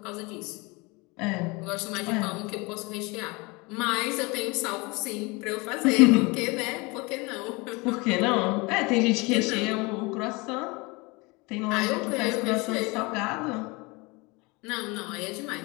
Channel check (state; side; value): quieter; right; 26.2 dB